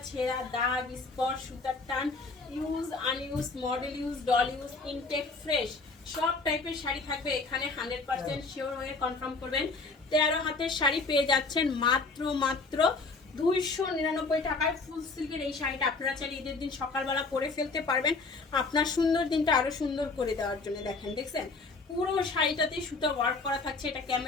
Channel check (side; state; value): right; quieter; 3.9 dB